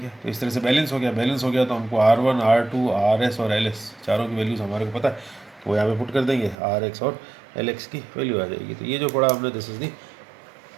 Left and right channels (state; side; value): drops out; left; at 6.6 s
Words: है। तो इस तरह से बैलेंस हो गया। बैलेंस हो गया तो हमको R1 R2 RS और LS चारों की वैल्यूज़ हमारे को पता है, तो वो यहाँ पे पुट कर देंगे, RX और LX की वैल्यू आ जाएगी। तो ये जो पढ़ा हमने, this is the